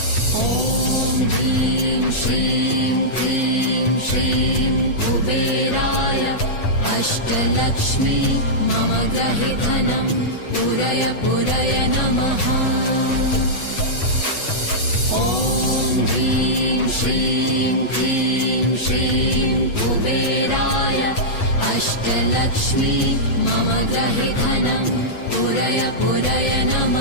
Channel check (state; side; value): late; right; 8.1 ms